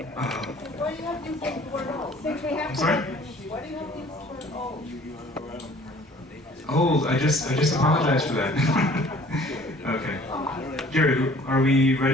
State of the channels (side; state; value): both; normal; correlation 0.53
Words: Why do you have to use the word old? Since we have I'm sorry? Why do you have to use the word old? Old, I just apologize for that. Okay. Gary, are we